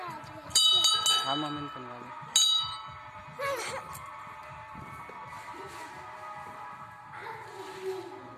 हा मोमेंट पण वाले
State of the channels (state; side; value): identical; both; correlation 1.00